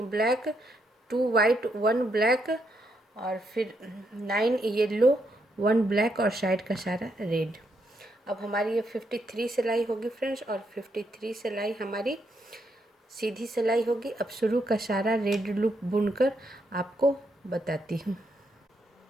2 white, 1 black और फिर 9 येलो, 1 ब्लैक और साइड का सारा रेड। अब हमारी ये 53 सिलाई होगी फ्रेंड्स, और 53 सिलाई हमारी सीधी सिलाई होगी। अब शुरू का सारा रेड लूप बुनकर आपको बताती हूँ।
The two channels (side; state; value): both; normal; correlation 0.78